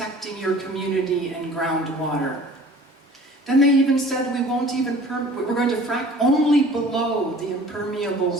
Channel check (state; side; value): normal; both; correlation 0.47